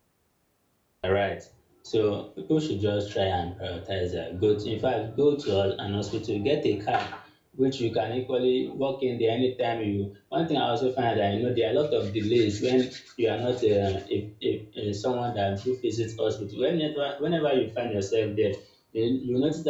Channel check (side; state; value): both; identical; correlation 1.00